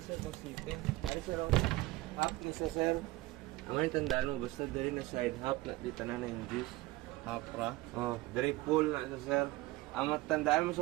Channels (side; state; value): left; quieter; 19.1 dB